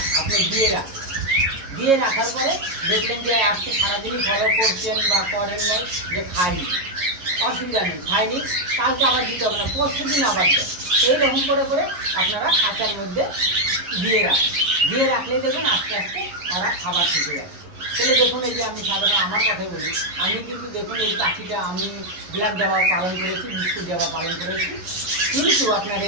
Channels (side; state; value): left; late; 11 ms